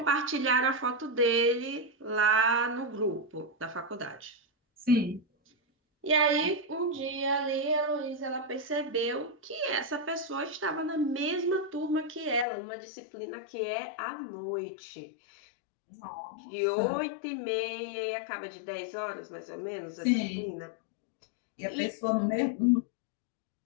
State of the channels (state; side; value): drops out; right; at 12.5 s